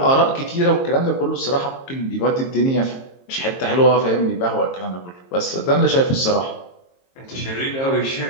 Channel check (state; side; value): late; right; 22 ms